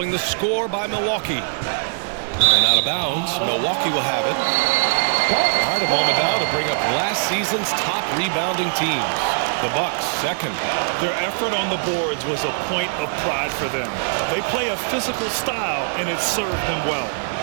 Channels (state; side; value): silent; left; 59 dB below the other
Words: the score by Milwaukee. And out of bounds, Milwaukee will have it. All right, a moment now to bring up last season's top rebounding teams. The Bucks, second. Their effort on the boards was a point of pride for them. They play a physical style, and it served them well.